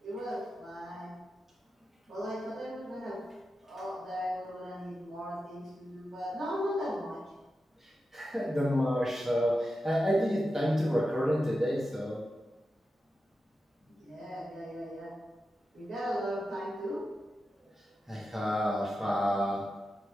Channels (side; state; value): both; normal; correlation 0.90